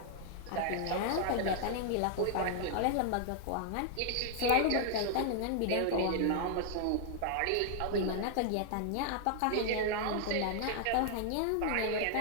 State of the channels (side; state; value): both; different; correlation 0.00